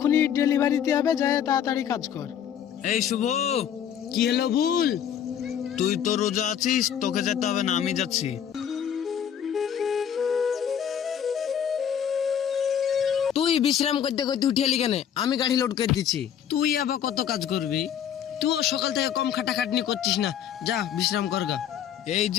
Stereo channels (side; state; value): right; quieter; 9.0 dB